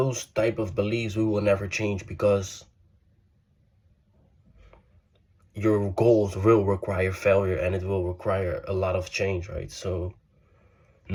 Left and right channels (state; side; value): identical; both; correlation 1.00